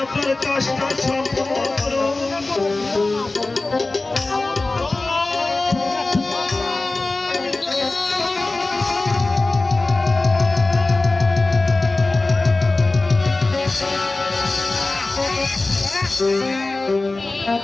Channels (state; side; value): quieter; right; 3.2 dB